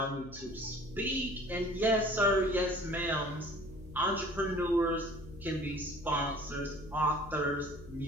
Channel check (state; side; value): noise; left; hum, 16 dB below the sound